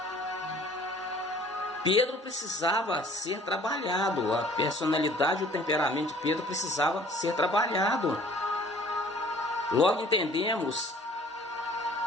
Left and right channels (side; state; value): both; normal; correlation 0.53